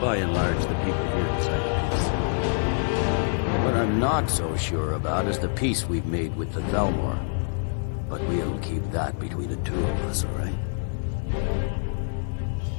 and large, the people here decide peace. What I'm not so sure about is the peace we've made with the Thalmor. But we'll keep that between the two of us, all right?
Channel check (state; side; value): silent; right; digital silence